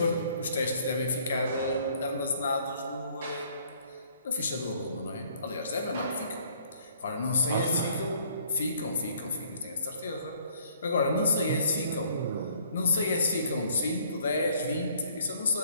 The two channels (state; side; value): inverted; both; correlation -0.60